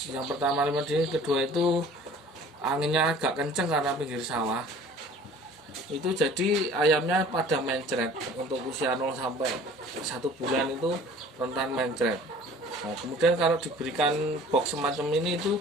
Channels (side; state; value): both; normal; correlation 0.47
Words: yang pertama lima dingin, kedua itu anginnya agak kenceng karena pinggir sawah. Itu jadi ayamnya pada mencret. Untuk usia 0 sampai 1 bulan itu rentan mencret. Nah, kemudian kalau diberikan box semacam ini itu